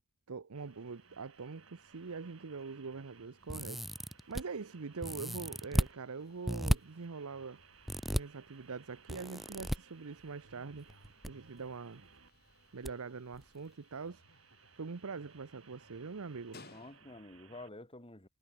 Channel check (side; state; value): both; normal; correlation 0.61